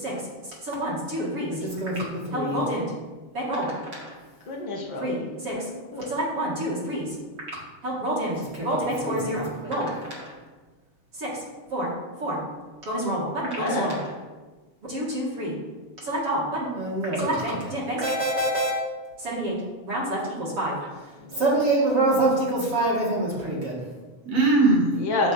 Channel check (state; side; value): late; left; 7.2 ms